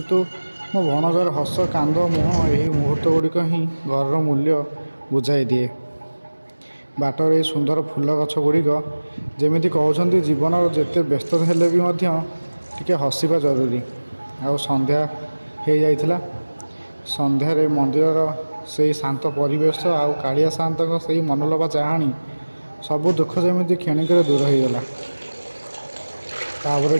ମୋ ଭଣଜାର ହସ, କାନ୍ଦ, ମୁହଁ ଏହି ମୁହୂର୍ତ୍ତ ଗୁଡ଼ିକ ହିଁ ଘରର ମୂଲ୍ୟ ବୁଝାଇ ଦିଏ। ବାଟର ଏଇ ସୁନ୍ଦର ଫୁଲ ଗଛ ଗୁଡ଼ିକ ଯେମିତି କହୁଛନ୍ତି, ଜୀବନର ଯେତେ ବ୍ୟସ୍ତ ହେଲେ ବି ମଧ୍ୟ ଟିକେ ହସିବା ଜରୁରୀ। ଆଉ ସନ୍ଧ୍ୟା ହେଇଯାଇଥିଲା। ସନ୍ଧ୍ୟାରେ ମନ୍ଦିରର ସେଇ ଶାନ୍ତ ପରିବେଶ ଆଉ କାଳିଆ ସାଆନ୍ତଙ୍କ ସେଇ ମନଲୋଭା ଚାହାଣୀ, ସବୁ ଦୁଃଖ ଯେମିତି କ୍ଷଣିକରେ ଦୂର ହୋଇଗଲା। ତାପରେ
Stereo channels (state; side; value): inverted; both; correlation -1.00